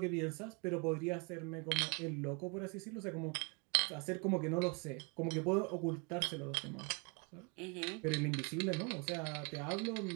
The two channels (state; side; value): quieter; left; 32.5 dB